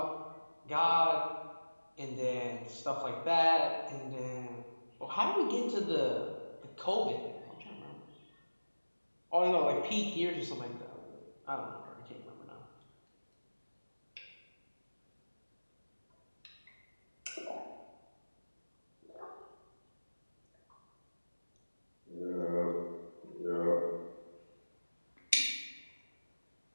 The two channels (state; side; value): inverted; both; correlation -1.00